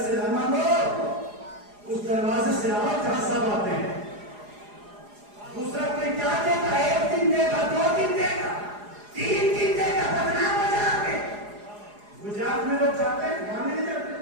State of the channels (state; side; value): late; left; 4.8 ms